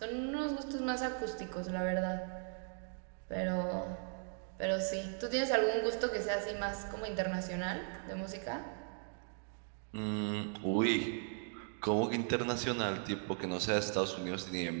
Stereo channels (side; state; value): left; silent; 53 dB below the other